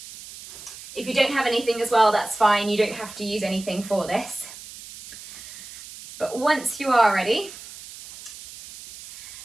If you don't have anything as well, that's fine. You don't have to use anything for this. But once you are ready,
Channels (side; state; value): right; noise; hiss, 15 dB below the sound